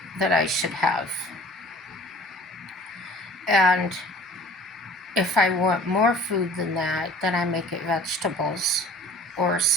that I should have. And if I want more food than that, then I make it vegetables or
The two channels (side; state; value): both; normal; correlation 0.48